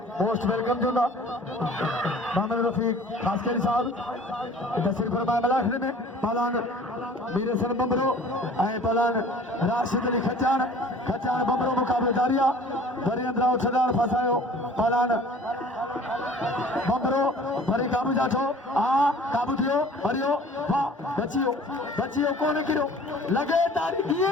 मोस्ट वेलकम चवंदा मोहम्मद रफ़ीक ख़ासकेरी साहब तशरीफ़ फरमाए मलाखरी में पहलवान मीर हसन बंबरो ऐं पहलवान राशिद अली खचान बंबरो मुक़ाबिलो जारी आहे वरी अंदरां छॾाण फसायो पहलवान बंबरो वरी काबू जाठो काबू थियो वरियो वाह बचियो कोन किरियो लॻे तारी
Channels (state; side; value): normal; both; correlation 0.48